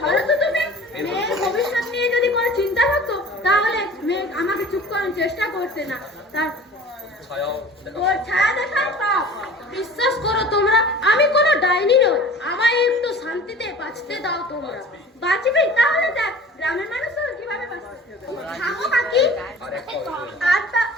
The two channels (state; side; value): normal; both; correlation 0.42